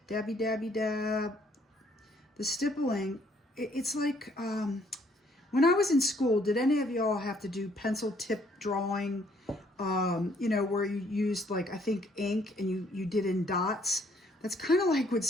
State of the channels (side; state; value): both; normal; correlation 0.65